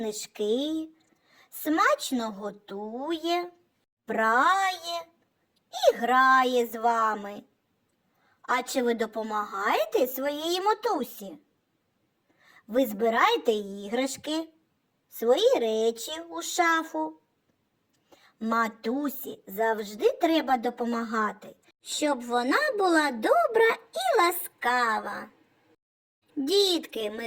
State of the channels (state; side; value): identical; both; correlation 1.00